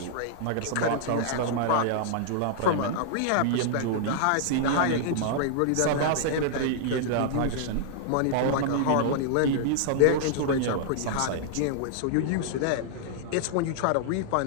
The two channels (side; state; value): both; different; correlation -0.01